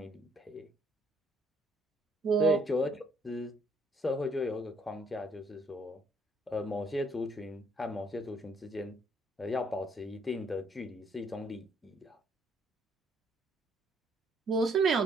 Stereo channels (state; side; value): normal; both; correlation 0.66